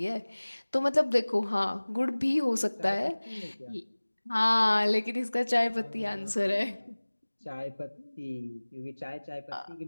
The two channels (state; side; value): inverted; both; correlation -1.00